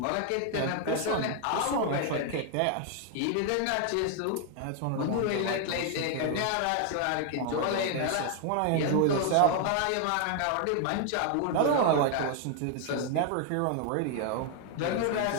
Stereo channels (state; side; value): different; both; correlation 0.00